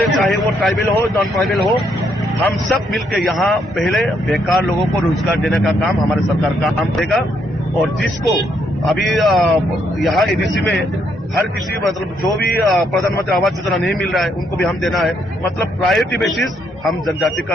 चाहे वो ट्राइबल हो नॉन ट्राइबल हो, हम सब मिलकर यहाँ पहले बेकार लोगों को रोजगार देने का काम हमारे सरकार का काम देगा। और जिसको अभी यहाँ एडीसी में हर किसी, मतलब जो भी प्रधानमंत्री आवास योजना नहीं मिल रहा है, उनको भी हम देना है। मतलब प्रायोरिटी बेसिस हम जनजाति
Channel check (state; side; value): normal; both; correlation 0.74